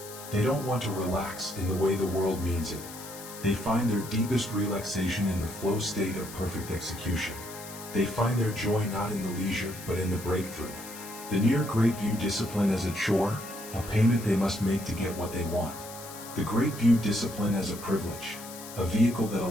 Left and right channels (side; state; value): left; noise; hiss, 14 dB below the sound